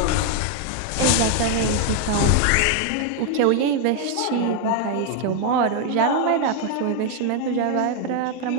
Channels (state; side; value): different; both; correlation 0.00